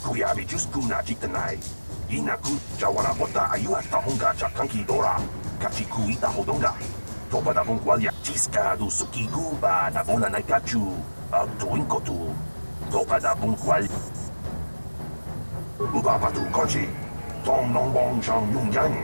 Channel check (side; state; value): both; inverted; correlation -1.00